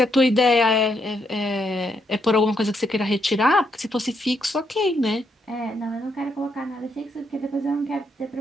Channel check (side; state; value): both; normal; correlation 0.77